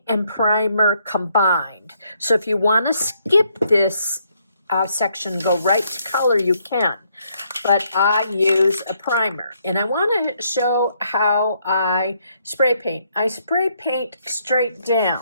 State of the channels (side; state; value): both; inverted; correlation -0.72